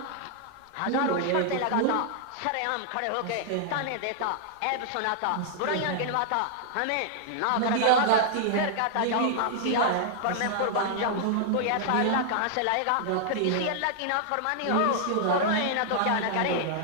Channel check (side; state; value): both; different; correlation -0.01